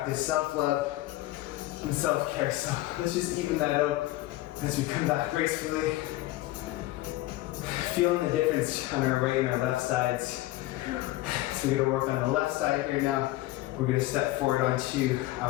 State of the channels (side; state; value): right; quieter; 17.3 dB